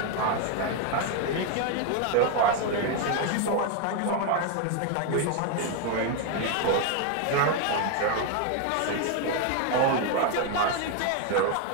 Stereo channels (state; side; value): different; both; correlation 0.01